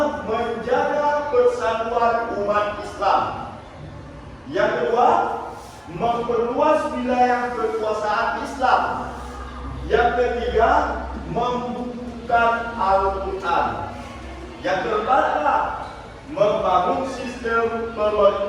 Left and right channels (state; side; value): identical; both; correlation 1.00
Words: menjaga persatuan umat Islam. Yang kedua, memperluas wilayah kekuasaan Islam. Yang ketiga, membukukan Al-Quran. Yang keempat adalah membangun sistem